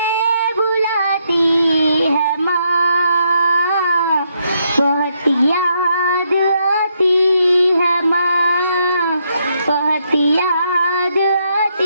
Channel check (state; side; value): inverted; both; correlation -0.77